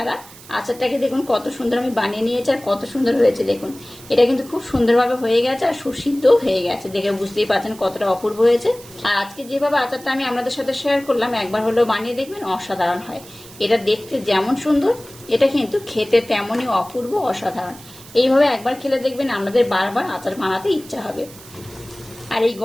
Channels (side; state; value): right; noise; hiss, 19 dB below the sound